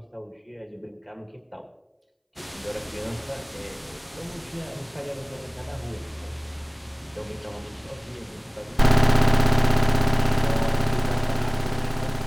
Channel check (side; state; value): both; identical; correlation 1.00